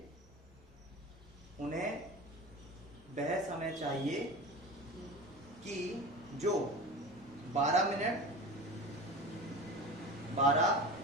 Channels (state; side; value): normal; both; correlation 0.32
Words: उन्हें वह समय चाहिए कि जो 12 मिनट